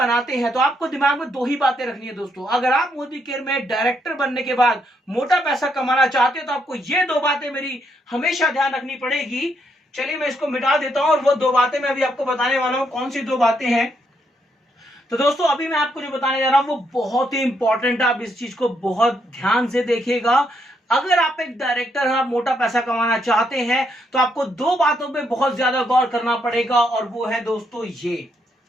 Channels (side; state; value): both; normal; correlation 0.76